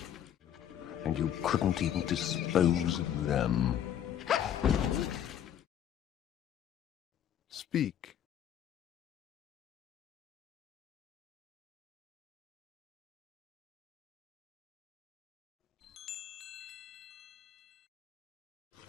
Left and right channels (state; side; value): quieter; right; 10.0 dB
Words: And you couldn't even dispose of them. Speak.